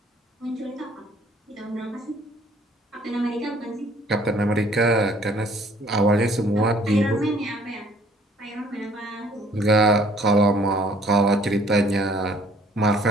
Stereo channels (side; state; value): both; normal; correlation 0.58